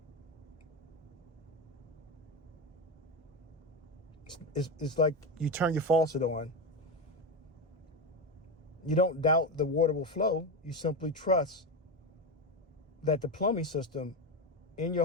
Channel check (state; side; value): normal; both; correlation 0.15